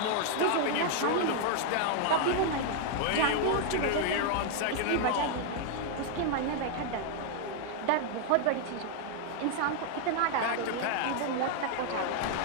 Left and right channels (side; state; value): both; different; correlation 0.00